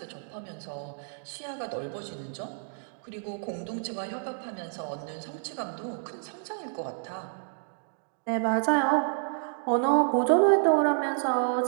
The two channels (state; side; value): silent; left; digital silence